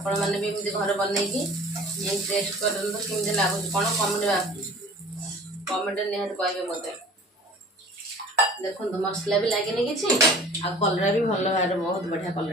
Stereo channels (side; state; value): both; normal; correlation 0.46